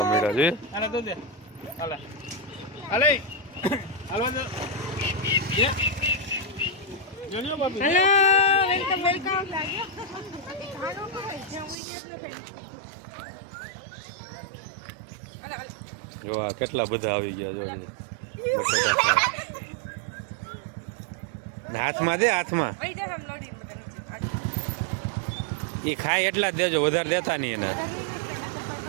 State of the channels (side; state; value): left; drops out; at 11.8 s